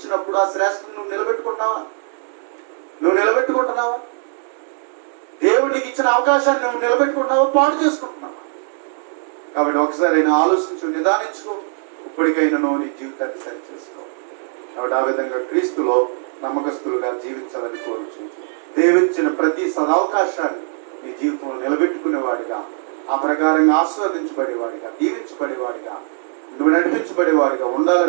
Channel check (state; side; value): silent; left; 66 dB below the other